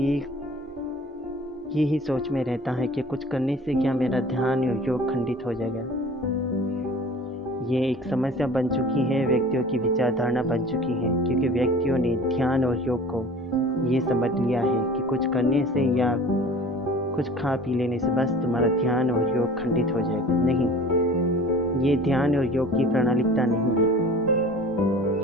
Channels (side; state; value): both; normal; correlation 0.43